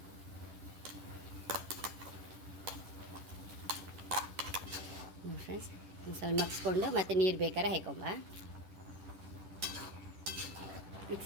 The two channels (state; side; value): late; left; 10 ms